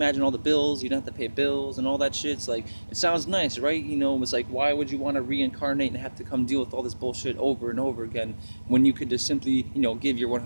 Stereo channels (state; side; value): inverted; both; correlation -1.00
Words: all the bills, you don't have to pay bills and all that shit. It's like, it sounds nice, right? It's like, why would you want to reincarnate and have to come deal with all this bullshit over and over again, when you could just simply give your